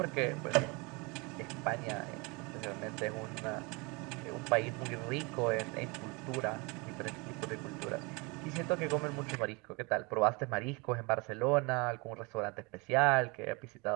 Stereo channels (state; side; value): quieter; left; 28.3 dB